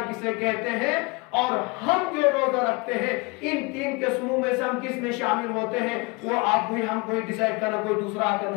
کسے کہتے ہیں، اور ہم جو روزہ رکھتے ہیں ان 3 قسموں میں سے ہم کس میں شامل ہوتے ہیں، وہ آپ کو ہم کوئی ڈیسائیڈ کرنا، کوئی دوسرا آ کر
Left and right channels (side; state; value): right; quieter; 27.8 dB